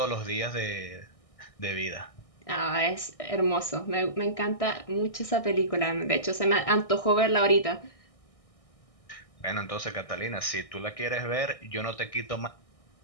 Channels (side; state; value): right; late; 1.6 ms